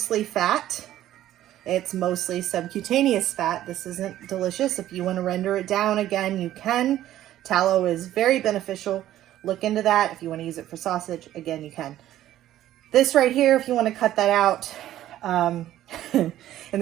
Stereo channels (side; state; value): left; quieter; 13.1 dB